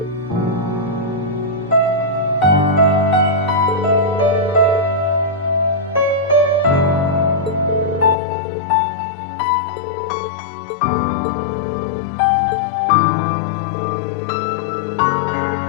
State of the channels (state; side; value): drops out; right; at 8.2 s